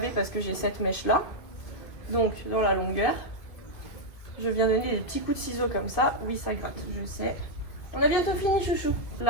parce que j'ai cette mèche-là. Donc, dans la longueur, je viens donner des petits coups de ciseaux comme ça. Oui, ça gratte, je sais. On a bientôt fini, chouchou.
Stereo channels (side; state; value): right; late; 2.5 ms